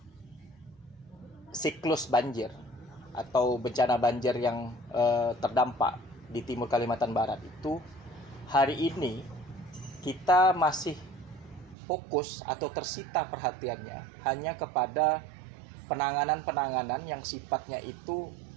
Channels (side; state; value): left; drops out; at 11.8 s